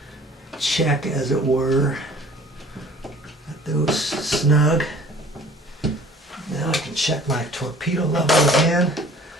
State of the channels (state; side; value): normal; both; correlation 0.50